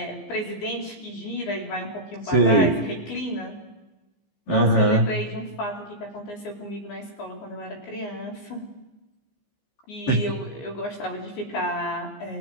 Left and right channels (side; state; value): right; late; 15 ms